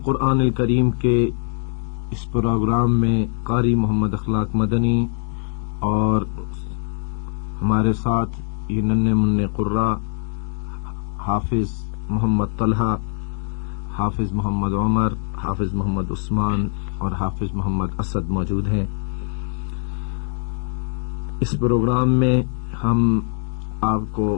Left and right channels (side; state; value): right; silent; 64 dB below the other